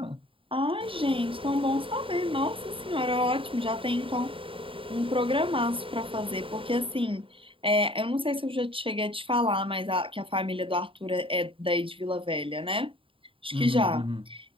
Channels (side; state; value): left; late; 0.25 ms